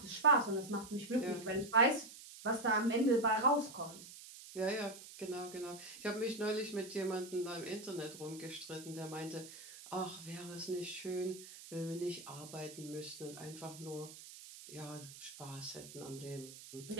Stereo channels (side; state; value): right; noise; hiss, 15 dB below the sound